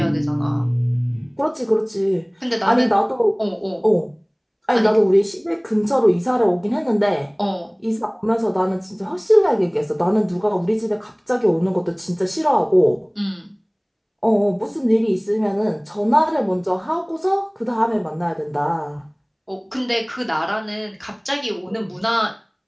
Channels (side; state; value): both; identical; correlation 1.00